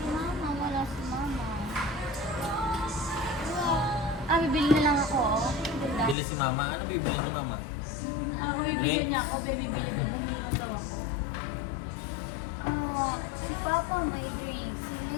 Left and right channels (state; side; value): drops out; right; at 6.2 s